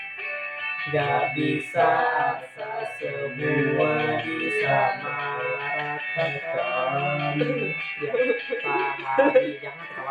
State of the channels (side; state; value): both; identical; correlation 1.00